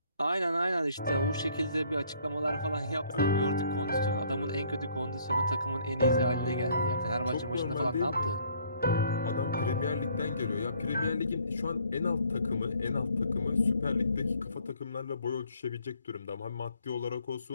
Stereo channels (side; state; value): both; inverted; correlation -0.62